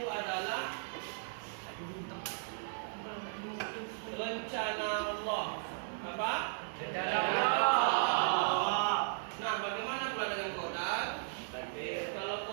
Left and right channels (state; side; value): silent; left; 54 dB below the other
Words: adalah rencana Allah. Apa? Rencana Allah. Nah, bagaimana pula dengan kodal? Kalau